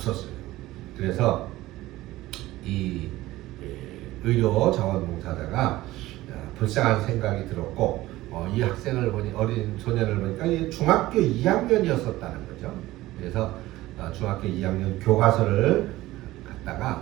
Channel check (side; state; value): left; quieter; 17.1 dB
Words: 그래서 이 의료 자원봉사자가 불쌍한 생각이 들었고 이 학생을 보니 어린 소년을 보니까 중학교 2학년이었었다는 거죠. 그래서 중학교 2학년 교과서를